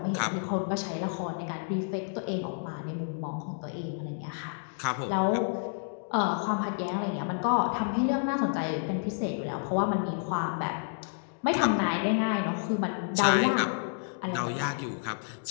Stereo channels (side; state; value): right; silent; digital silence